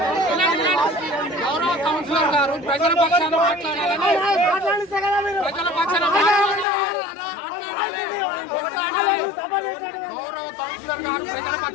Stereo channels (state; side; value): drops out; right; at 6.7 s